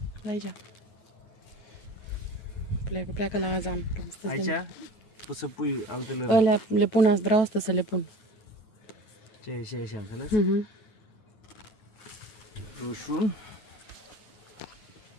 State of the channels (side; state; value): right; late; 9.3 ms